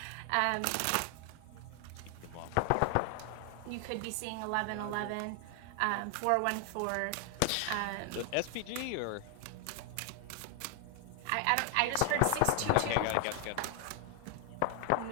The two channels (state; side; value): different; both; correlation 0.00